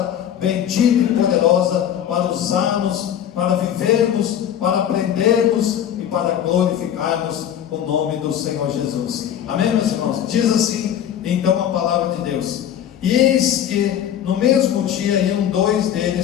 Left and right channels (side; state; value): right; quieter; 10.0 dB